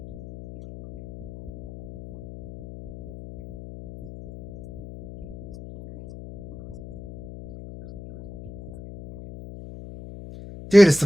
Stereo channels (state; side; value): noise; left; hum, 16 dB below the sound